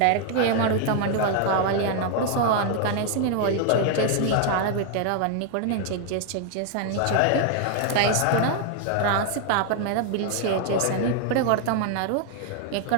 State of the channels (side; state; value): both; different; correlation 0.00